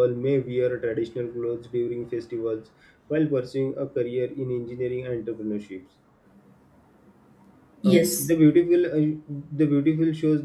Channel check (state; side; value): identical; both; correlation 1.00